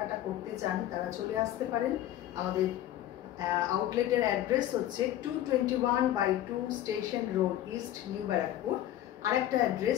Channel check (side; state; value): right; quieter; 12.7 dB